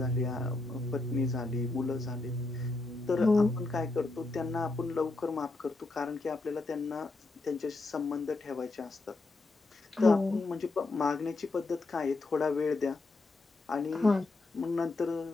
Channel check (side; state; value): right; quieter; 3.2 dB